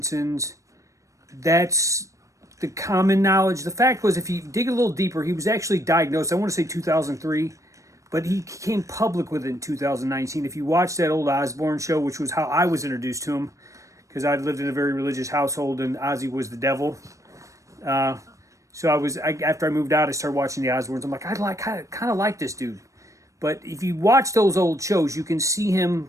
That's the common knowledge. The fact was, if you dig a little deeper, he was actually diagnosed, I want to say 2003, but he came public with it in 2019. If you watch that old Osbourne show, which was how I was introduced to him, because I'd lived in a very religious household and Ozzy was the devil. So after I moved out, I started watching the Osbournes. I'm like, I kind of like this dude. But if you watch those old shows, you can see him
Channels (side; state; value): left; late; 0.15 ms